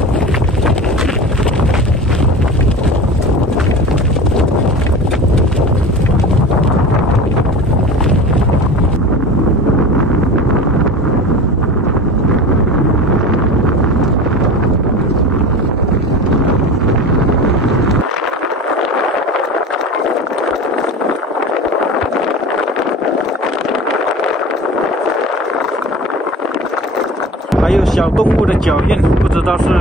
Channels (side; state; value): both; normal; correlation 0.34